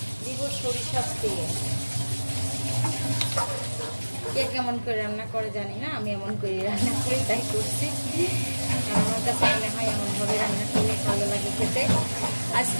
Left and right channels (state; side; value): inverted; both; correlation -1.00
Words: দিব সরিষার তেল। কে কেমন করে রান্না করে জানি না, আমি এমন করে রান্না করি, তাই করছি। আমার কাছে মনে হয় এমনভাবে রান্না করলে ভালো লাগে খেতে।